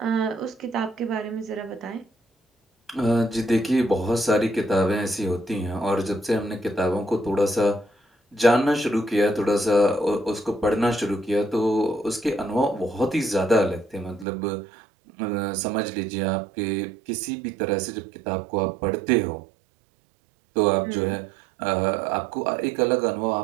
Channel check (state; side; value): drops out; left; at 14.2 s